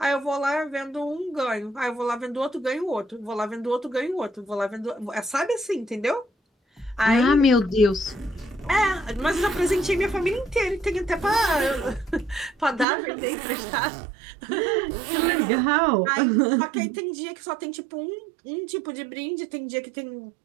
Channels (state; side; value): drops out; left; at 12.9 s